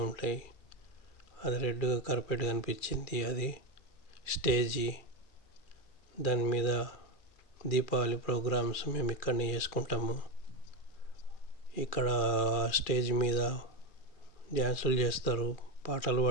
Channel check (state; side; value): late; right; 2.3 ms